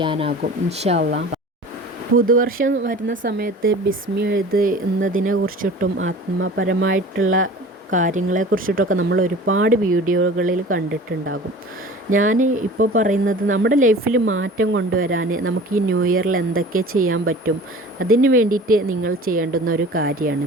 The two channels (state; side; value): normal; both; correlation 0.41